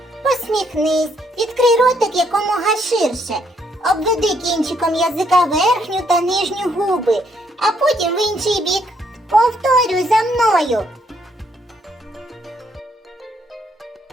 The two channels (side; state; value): both; normal; correlation 0.71